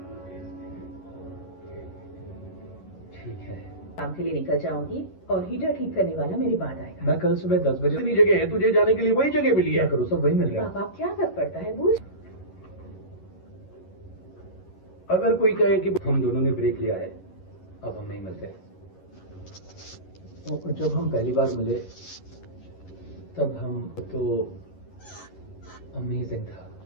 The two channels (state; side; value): late; right; 11 ms